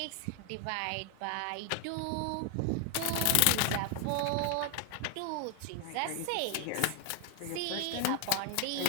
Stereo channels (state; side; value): different; both; correlation 0.01